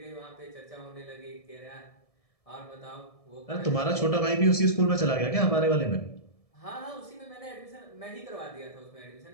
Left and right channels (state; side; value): late; right; 1.7 ms